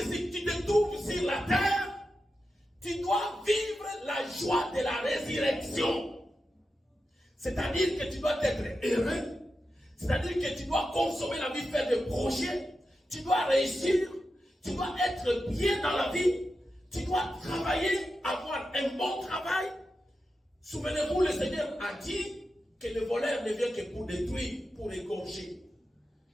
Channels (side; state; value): both; normal; correlation 0.90